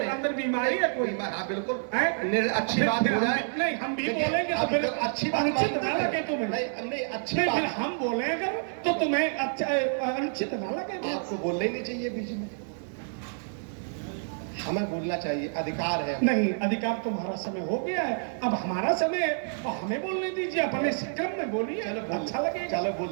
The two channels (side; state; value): left; silent; 59 dB below the other